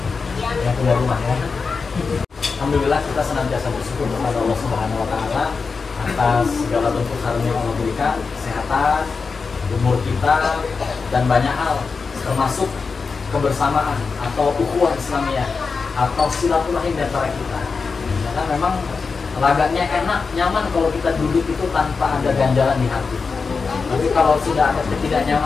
yang punya rumah ya. Alhamdulillah kita senantiasa bersyukur kepada Allah Subhanahu wa taala atas segala bentuk karunia yang Allah berikan, kesehatan, umur kita, dan banyak hal, termasuk kebersamaan atau ukhuwah Islamiyah atau silaturahim di antara kita. Karena memang lagaknya enak, nyaman kalau kita duduk itu tanpa ada ganjalan di hati. Tapi kalau sudah ada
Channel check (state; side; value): quieter; right; 4.8 dB